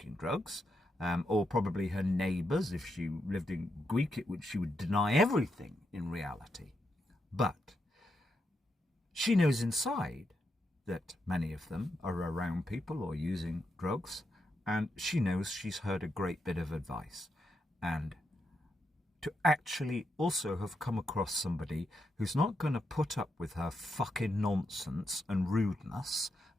drugs, or probably her neighbours. If she lived in Gweek, she would deny everything in reality. But she knows inside that many of them are around people or using drugs, and she knows she's heard a great bit of advice. And to actually also have come across somebody who's not going to put up with her fucking nonsense and rudeness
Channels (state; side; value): normal; both; correlation 0.83